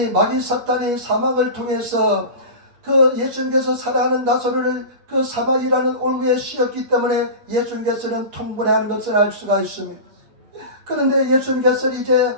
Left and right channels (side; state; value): left; late; 8.8 ms